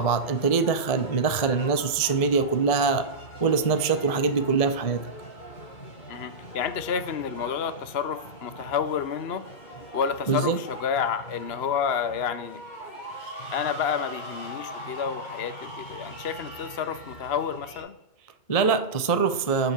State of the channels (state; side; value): late; right; 1.7 ms